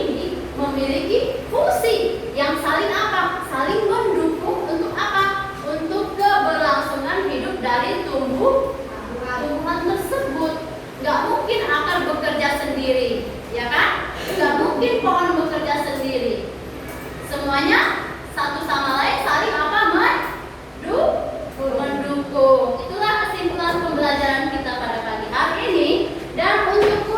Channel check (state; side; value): identical; both; correlation 1.00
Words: memiliki fungsi yang saling apa? Saling mendukung untuk apa? Untuk keberlangsungan hidup dari tumbuhan tersebut. Gak mungkin akar bekerja sendiri, ya kan? Gak mungkin pohon bekerja sendiri. Semuanya satu sama lain saling apa? Mendukung. Itulah kesimpulan pembelajaran kita pada pagi hari ini. Dan untuk